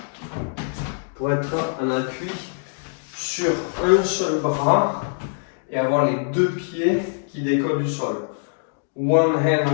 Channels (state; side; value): silent; right; digital silence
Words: Pour être en appui sur un seul bras et avoir les deux pieds qui décollent du sol. One hand